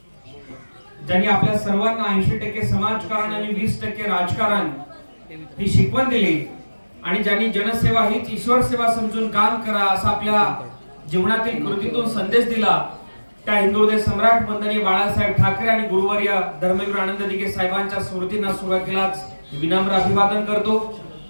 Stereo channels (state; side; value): inverted; both; correlation -1.00